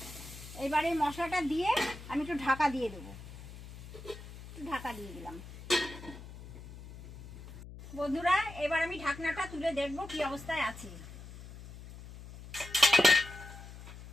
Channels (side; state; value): left; noise; hum, 15 dB below the sound